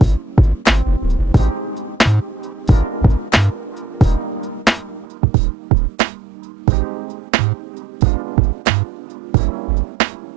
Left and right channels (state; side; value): drops out; left; at 5.1 s